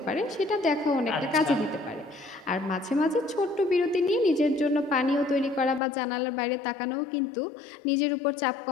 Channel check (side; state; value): right; drops out; at 5.8 s